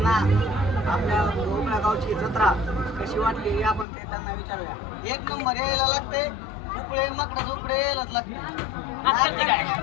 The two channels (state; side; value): drops out; right; at 3.9 s